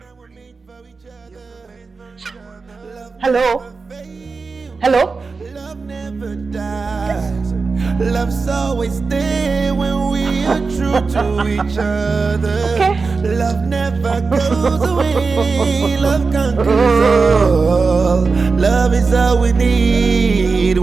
Hello? Hello? Love never dies. Love's always there when we are true to each other. Okay. Love never goes away. Love conquers all. Love is all we need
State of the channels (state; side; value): quieter; left; 4.4 dB